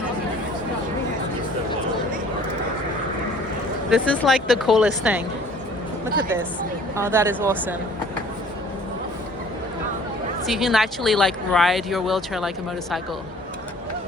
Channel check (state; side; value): normal; both; correlation 0.52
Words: This is like the coolest thing. Look at this. Oh, that is awesome. So you can actually like ride your wheelchair like a motorcycle.